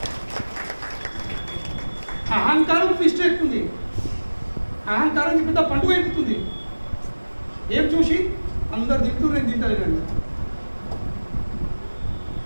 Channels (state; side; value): inverted; both; correlation -1.00